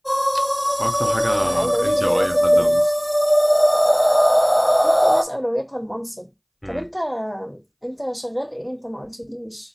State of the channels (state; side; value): identical; both; correlation 1.00